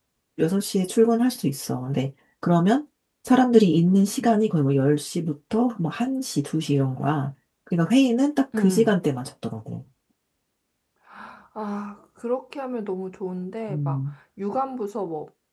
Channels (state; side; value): identical; both; correlation 1.00